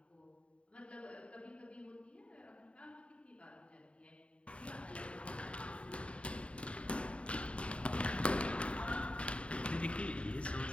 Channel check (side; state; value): right; late; 0.061 ms